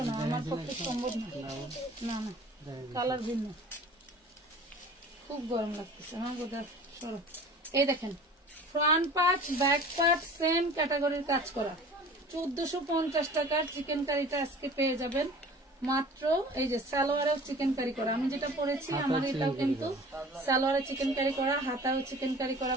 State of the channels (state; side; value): normal; both; correlation 0.44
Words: না, আমার পক্ষে সম্ভব না, না না কালার ভিন্ন, খুব গরম লাগতেছে আমার বোধহয়। সরো, এই দেখেন front part back part same ক্যাটাগরির কাজ করা, 1450 টাকার চিকেন কারিটা আজকে পেয়ে যাবেন মাত্র এই যে সালোয়ারেও চিকেন কারি করা, আমি যেটা পরেছি আমার এটাও কিন্তু সালোয়ারে চিকেন কারি করা, হাতাও চিকেন কারি করা